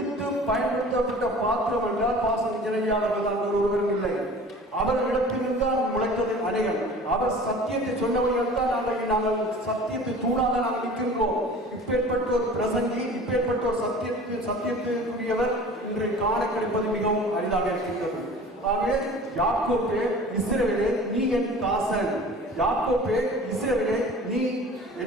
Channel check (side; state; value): both; normal; correlation 0.42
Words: பயன்படுத்தப்பட்ட பாத்திரம் என்றால் பாசன் இணையாளர்கள் தான் ஒருவரும் இல்லை. அவர்களிடத்திலிருந்து தான் முளைத்தது அநேகம். அவர் சத்தியத்தை சொன்னவர்கள் தான் நாங்கள் சத்தியத்தை தூணாக நாங்கள் நிற்கின்றோம். இப்பேற்பட்ட ஒரு பிரசங்கி, இப்பேற்பட்ட ஒரு சத்தியத்திற்குரியவர் இன்று காண கிடைப்பது மிகவும் அரிதாக இருக்கின்றது. ஆகவே யாக்கோபே இஸ்ரவேலே நீ என் தாசன். யாக்கோபே இஸ்ரவேலே நீ